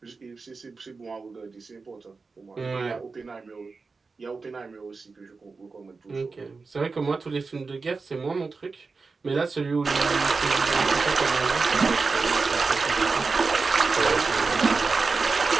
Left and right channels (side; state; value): left; quieter; 4.3 dB